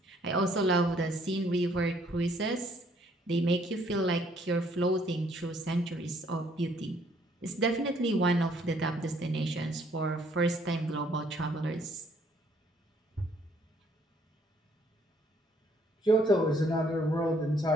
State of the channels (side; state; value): both; normal; correlation 0.65